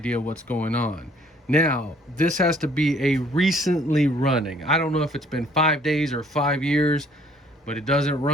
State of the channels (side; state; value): both; normal; correlation 0.60